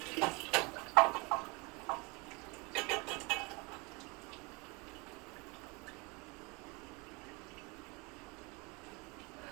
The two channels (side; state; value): left; quieter; 28.2 dB